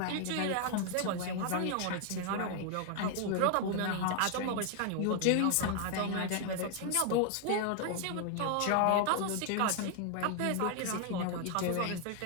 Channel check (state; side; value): different; both; correlation 0.00